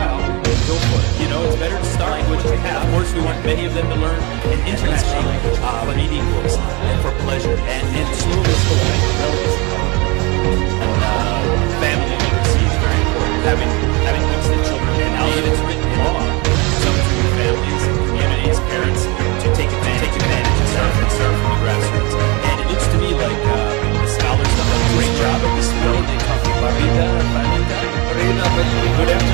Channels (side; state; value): left; quieter; 27.3 dB